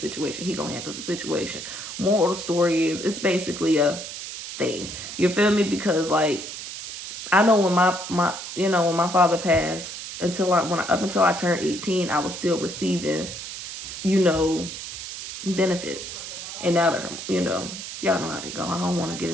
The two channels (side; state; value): right; noise; hiss, 9 dB below the sound